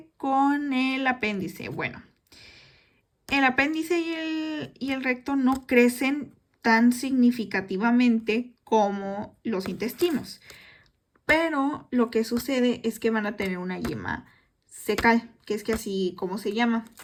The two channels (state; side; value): identical; both; correlation 1.00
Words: con el apéndice? Bueno, el apéndice y el recto no crecen tan significativamente como los intestinos, pero lo que sucede es que van a tener una yema cecal, que es que así como se llama,